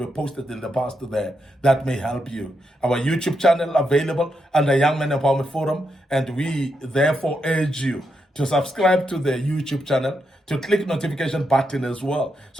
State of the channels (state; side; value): normal; both; correlation 0.82